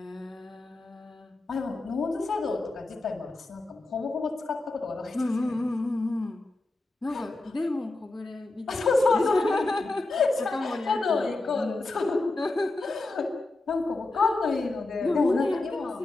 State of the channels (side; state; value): right; quieter; 3.0 dB